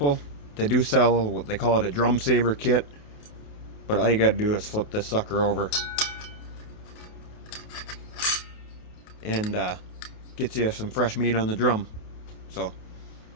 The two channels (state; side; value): late; right; 28 ms